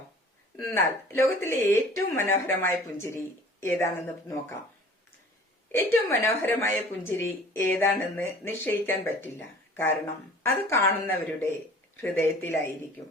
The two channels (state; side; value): normal; both; correlation 0.47